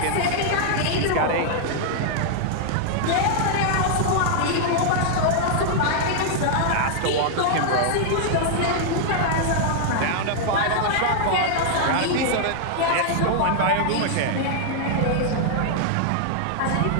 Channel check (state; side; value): different; both; correlation -0.01